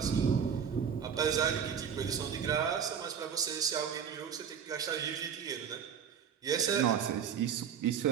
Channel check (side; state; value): left; quieter; 7.7 dB